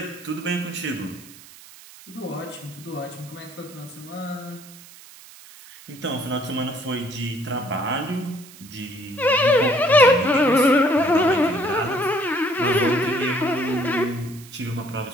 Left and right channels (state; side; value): noise; right; hiss, 20 dB below the sound